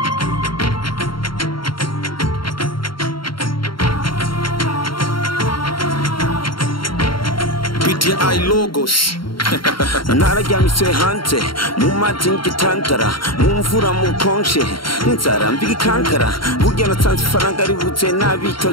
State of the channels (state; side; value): late; right; 0.73 ms